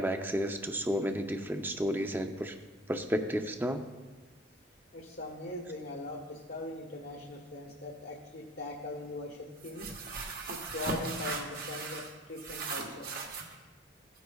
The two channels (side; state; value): both; normal; correlation 0.51